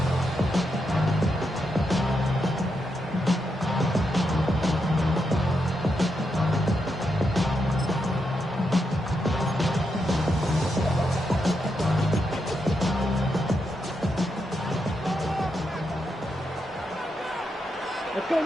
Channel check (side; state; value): both; normal; correlation 0.83